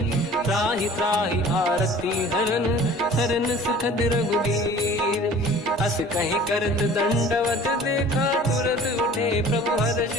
त्राहि त्राहि आरती हरन शरण सुखद रघुवीर अस कहीं करत दंडवत देखा तुरत उठे प्रभु हर्ष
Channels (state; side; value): normal; both; correlation 0.47